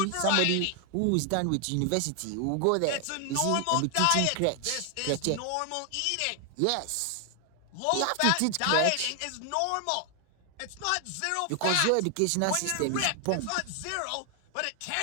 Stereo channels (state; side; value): different; both; correlation 0.00